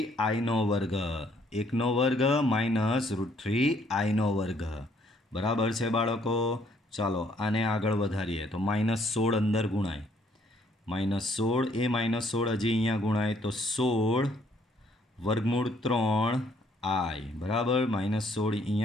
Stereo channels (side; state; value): both; normal; correlation 0.66